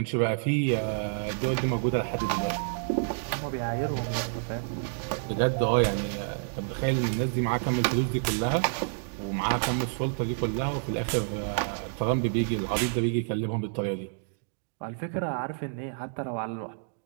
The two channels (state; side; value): silent; left; digital silence